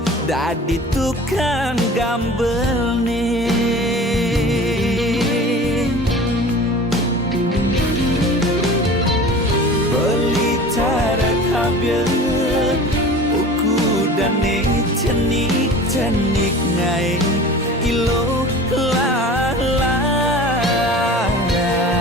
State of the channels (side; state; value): both; normal; correlation 0.39